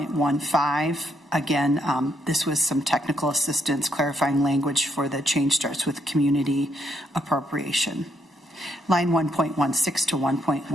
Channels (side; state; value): both; normal; correlation 0.74